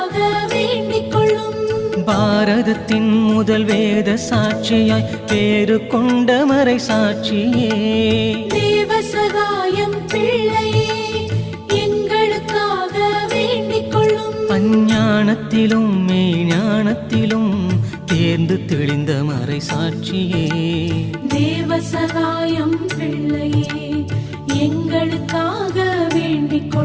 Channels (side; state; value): both; identical; correlation 1.00